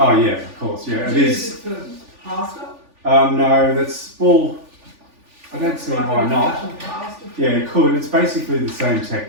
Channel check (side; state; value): left; late; 3.4 ms